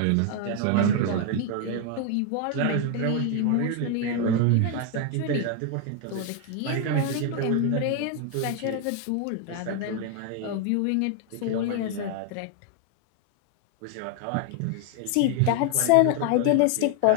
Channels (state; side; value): different; both; correlation 0.01